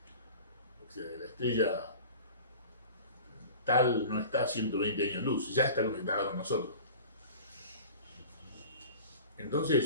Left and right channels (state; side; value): inverted; both; correlation -0.40